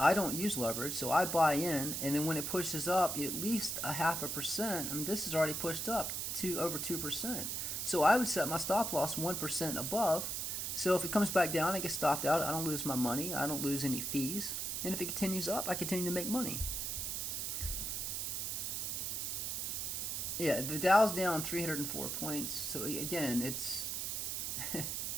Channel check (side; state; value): right; noise; hiss, 2 dB below the sound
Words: I don't use leverage, so I buy in, and then when it pushes up at least a 0.5%, I mean, this is already pushed up to over 2%. So I would set my stop loss 1% above. So if it comes back down, I get stopped out. I don't lose my money. I don't lose any fees. And if it continues up, I continue to make money. Yeah, the Dow's down 304 points. So again, it's...